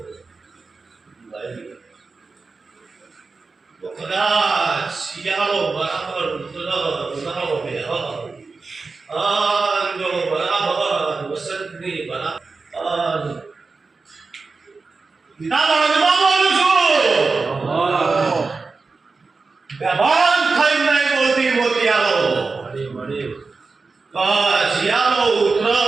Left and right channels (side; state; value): left; quieter; 4.2 dB